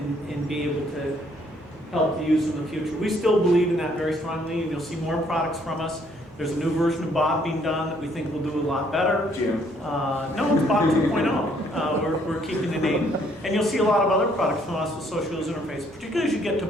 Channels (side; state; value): both; normal; correlation 0.66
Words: be able to help the user in the future. We still believe in that very strongly, and you'll see more products from us. There's a new version of Bob being done that we think will do a lot better. Jim. No, it's Bob 2.0. We're keeping the name. And you'll see a lot of other products from us with social user interface, particularly as you get to